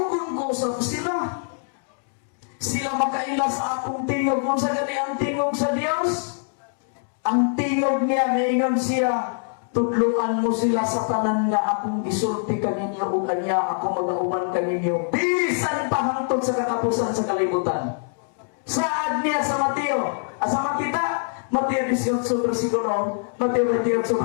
ko sa sila. Sila makaila sa akong tingog. Kung sa gani ang tingog sa Dios, ang tingog niya, naingon siya, tudluan mo sila sa tanan nga akong gisulti kaninyo o kanya ako mag-auman kaninyo. Bisan pa hangtod sa katapusan sa kalibutan. Saad niya sa Mateo, sa Matita, Mateo 18 versikulo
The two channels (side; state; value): right; silent; 59 dB below the other